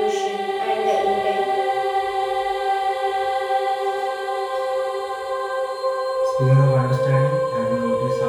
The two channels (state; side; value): identical; both; correlation 1.00